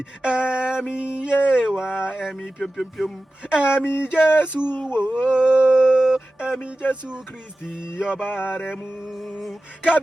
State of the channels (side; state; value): both; normal; correlation 0.95